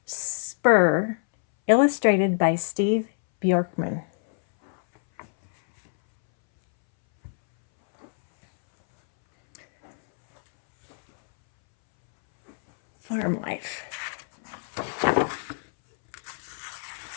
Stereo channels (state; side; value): silent; right; 62 dB below the other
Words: Spur, illustrated by Steve Bjorkman. Farm life.